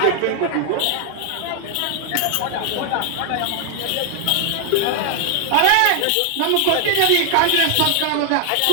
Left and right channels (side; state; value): both; different; correlation 0.00